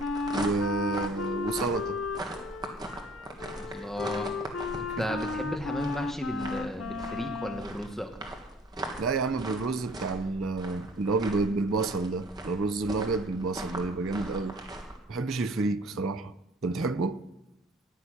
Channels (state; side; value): normal; both; correlation 0.53